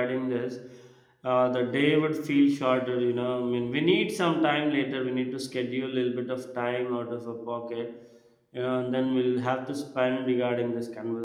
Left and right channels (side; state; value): both; identical; correlation 1.00